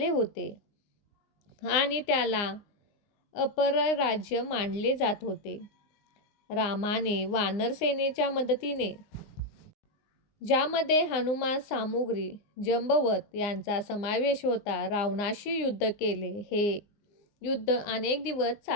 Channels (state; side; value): late; right; 19 ms